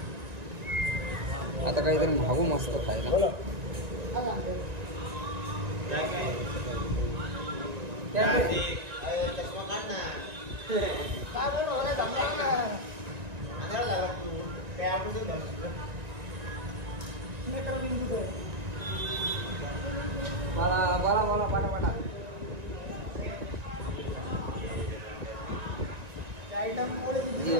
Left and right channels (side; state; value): left; late; 1.9 ms